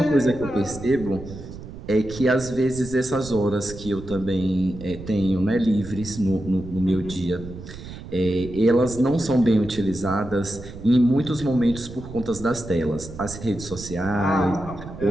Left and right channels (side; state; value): right; noise; rumble, 13 dB below the sound